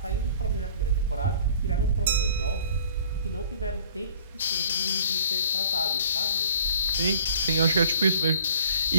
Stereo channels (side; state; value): both; inverted; correlation -0.52